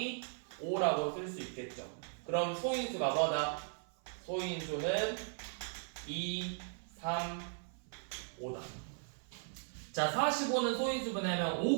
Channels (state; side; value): silent; left; 53 dB below the other